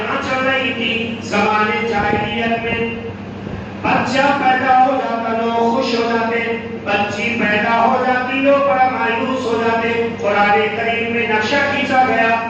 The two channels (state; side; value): identical; both; correlation 1.00